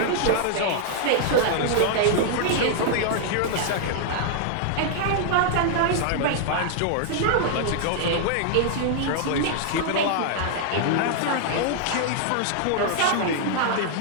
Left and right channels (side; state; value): both; different; correlation -0.01